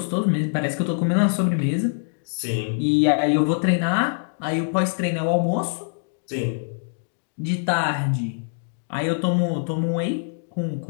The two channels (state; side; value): silent; right; digital silence